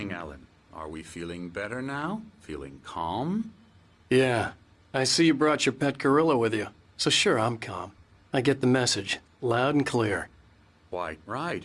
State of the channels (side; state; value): both; identical; correlation 1.00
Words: Alan. Are we feeling better now? Feeling calm? Yeah. I see you brought your pet gorilla with you. So sure, I'm calm. I get the message. Loud and clear. Quite right.